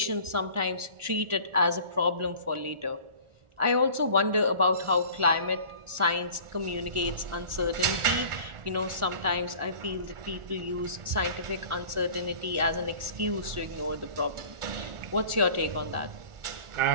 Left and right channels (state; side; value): late; left; 1.4 ms